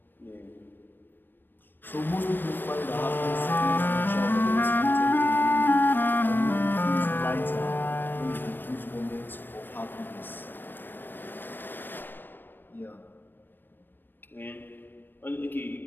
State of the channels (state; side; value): late; right; 0.094 ms